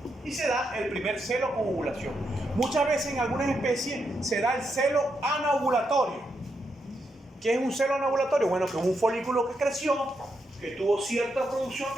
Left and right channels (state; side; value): normal; both; correlation 0.82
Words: Y se da el primer celo con ovulación. Muchas veces en algunas especies se da el celo anovulatorio. ¿Qué es un celo anovulatorio? Bueno, que es un folículo que creció, que tuvo cierta producción